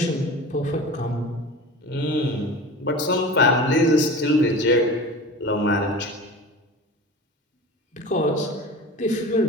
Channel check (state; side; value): normal; both; correlation 0.35